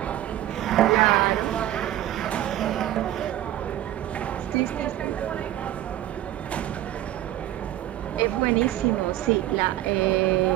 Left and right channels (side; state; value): left; quieter; 13.4 dB